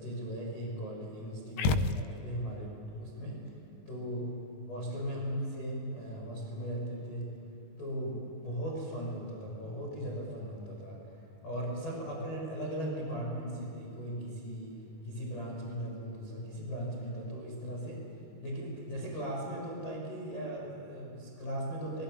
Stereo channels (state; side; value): late; right; 20 ms